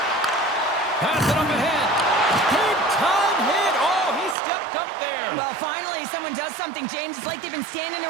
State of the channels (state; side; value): drops out; left; at 4.4 s